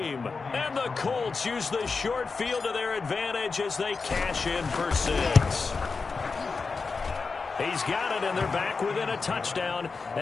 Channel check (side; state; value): right; quieter; 4.6 dB